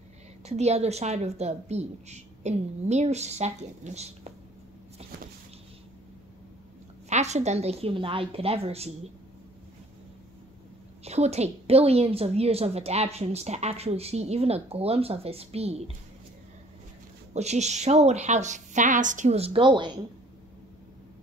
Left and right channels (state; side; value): normal; both; correlation 0.55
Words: to the other side of the beach in mere seconds. Faster than the human eye could ever see. It would take billions of years of adaptations to actually see even a glimpse of his speed, which just showed how fast he was going.